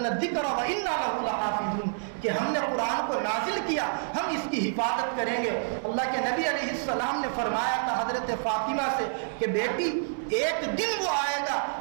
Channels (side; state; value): left; silent; 59 dB below the other